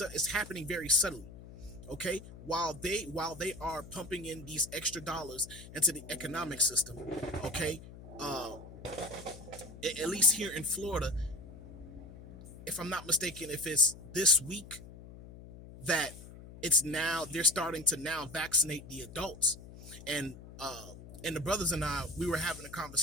Okay, while they are pumping in these extra dollars into the economic system. Okay, uh at least here in Florida, if I'm not mistaken, if it's this week that it's now they're starting to now vaccinate the adults. And uh and the brothers and we were having a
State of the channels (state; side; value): noise; left; hum, 16 dB below the sound